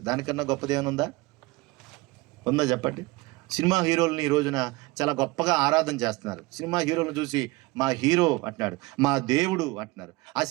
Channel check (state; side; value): quieter; left; 22.4 dB